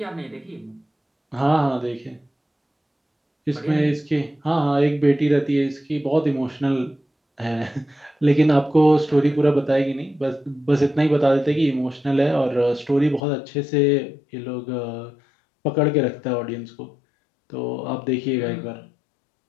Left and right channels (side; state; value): right; drops out; at 13.2 s